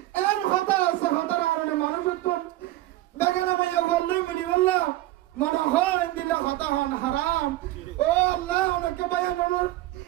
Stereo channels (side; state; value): left; quieter; 16.6 dB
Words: এন হতা আছে হতার কারণে মানুষ বেগানা মাইয়া বললে মিনি বললাম মনে হয় দিলে হতা হন হারাম ও আল্লাহ অনেকে বায়ান